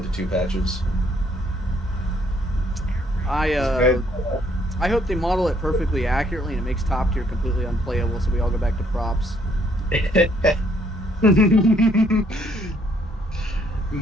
to 2 patches. I hope they model it perfectly accurately and it makes top tier completely unplayable, so we all go back to props.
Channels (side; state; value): both; normal; correlation 0.68